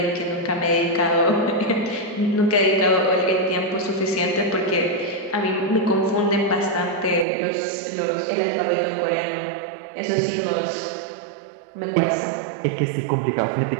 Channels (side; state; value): left; drops out; at 7.2 s